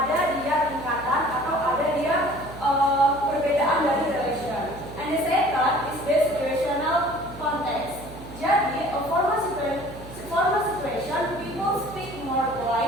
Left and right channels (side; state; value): right; noise; hum, 15 dB below the sound